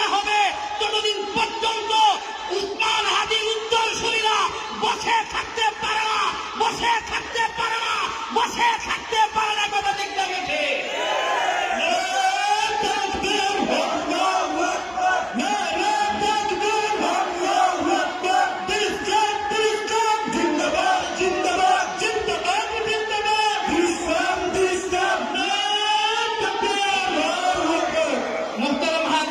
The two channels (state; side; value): identical; both; correlation 1.00